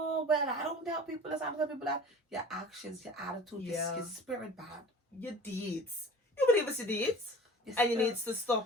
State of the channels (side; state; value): both; normal; correlation 0.43